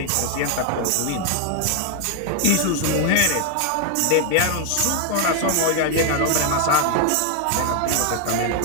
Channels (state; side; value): different; both; correlation 0.00